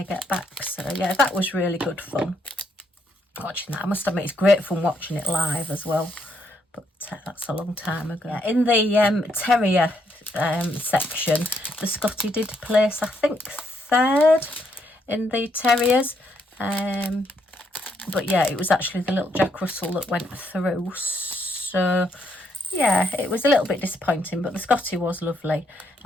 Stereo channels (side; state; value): both; normal; correlation 0.74